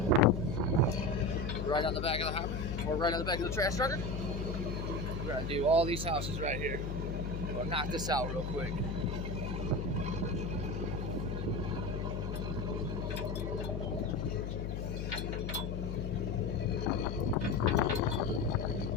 Right on the back of the hopper, or right on the back of the trash trucker. We're gonna do all these houses right here. We'll knock this out real quick.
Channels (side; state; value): left; noise; hum, 3 dB below the sound